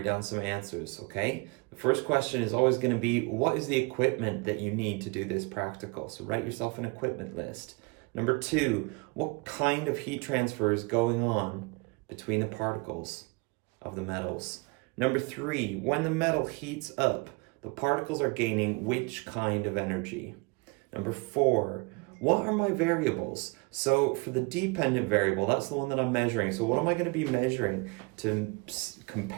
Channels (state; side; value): quieter; left; 28.9 dB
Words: down some answers, okay? The first question is always going to be, what is the equipment that you need to do this practical? So write yourself an equipment list. Number two, what kind of heat transfer is going on between the particles of the metals? Number three, when the metal heats up, the particles are gaining which kind of energy? Number four, what are my variables? So for the dependent variable, that's the one that I'm measuring. So what am I going to be measuring to